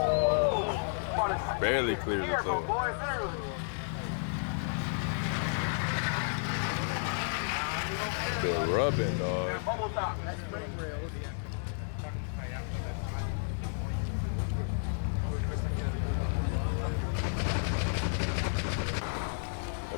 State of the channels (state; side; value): silent; right; 56 dB below the other